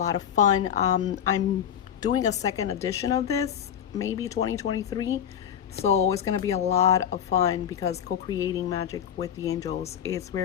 of fun. I'm doing a second edition of this, maybe 2023. So it's going to be a lot of fun, because co-creating magic with the angels is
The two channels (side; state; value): right; quieter; 9.1 dB